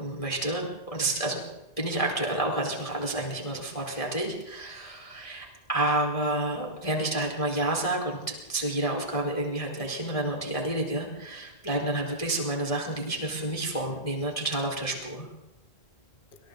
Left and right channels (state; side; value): late; right; 1.6 ms